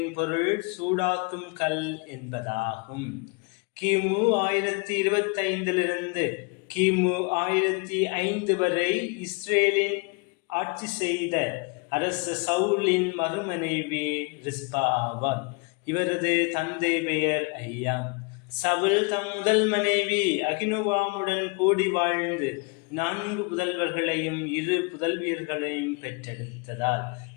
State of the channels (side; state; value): right; quieter; 31.1 dB